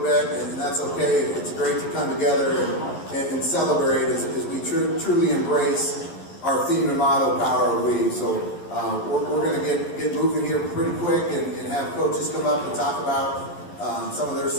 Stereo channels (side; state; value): right; late; 11 ms